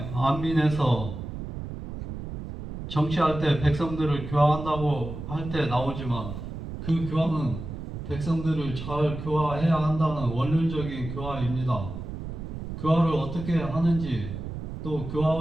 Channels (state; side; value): noise; right; rumble, 8 dB below the sound